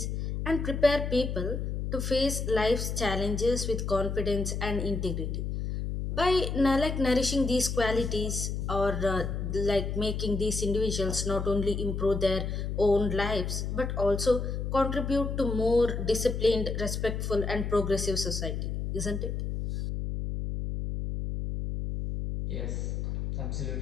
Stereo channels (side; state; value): left; noise; hum, 3 dB below the sound